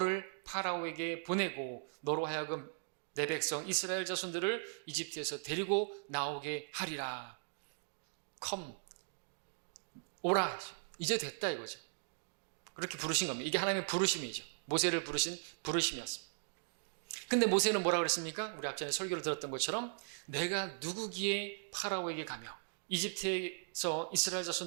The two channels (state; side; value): silent; left; digital silence